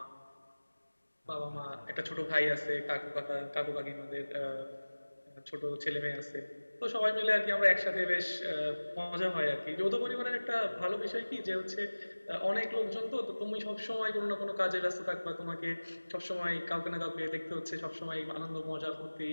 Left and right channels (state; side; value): inverted; both; correlation -1.00